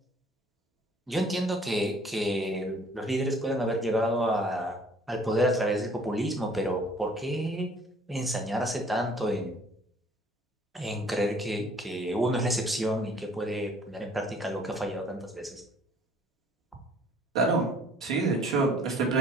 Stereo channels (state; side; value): normal; both; correlation 0.56